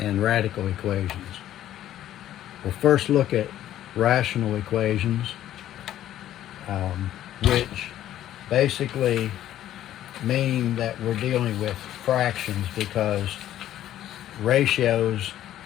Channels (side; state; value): right; quieter; 12.4 dB